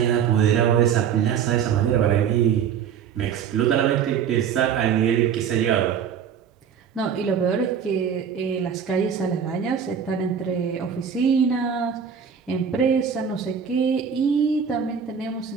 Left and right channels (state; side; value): quieter; left; 7.6 dB